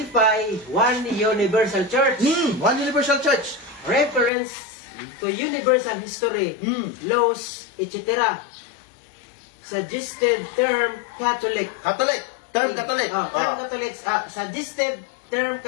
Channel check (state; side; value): drops out; right; at 4.3 s